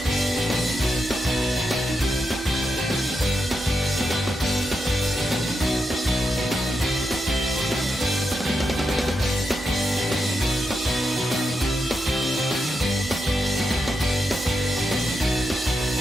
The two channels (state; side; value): normal; both; correlation 0.85